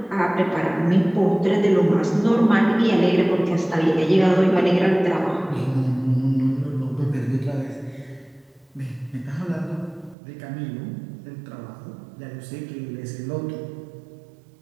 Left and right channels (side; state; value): left; drops out; at 10.2 s